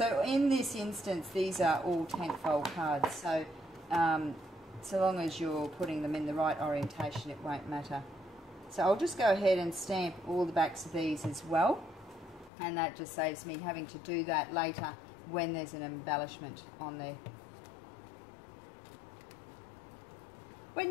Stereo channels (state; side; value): drops out; right; at 12.5 s